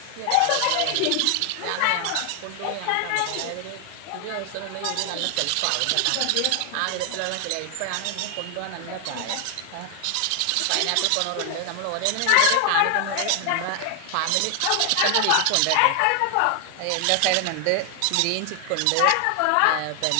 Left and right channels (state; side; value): different; both; correlation 0.00